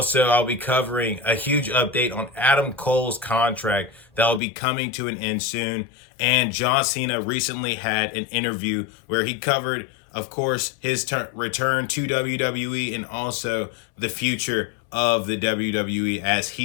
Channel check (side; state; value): right; drops out; at 4.4 s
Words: I'll be covering a huge update on Adam Cole's contract that will be coming to an end soon. And John Cena recently had an interview where he covered, of course, his return to WWE and also the future of the WWE as